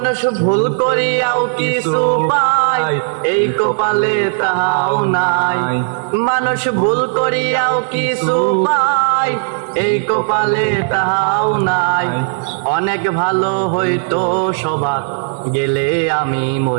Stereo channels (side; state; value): left; silent; 69 dB below the other